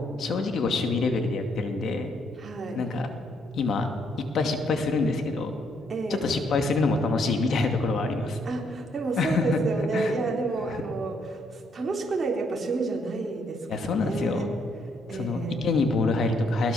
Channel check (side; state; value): both; normal; correlation 0.72